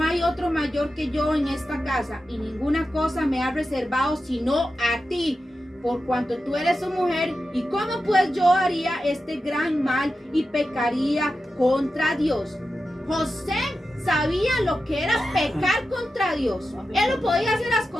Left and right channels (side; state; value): both; normal; correlation 0.91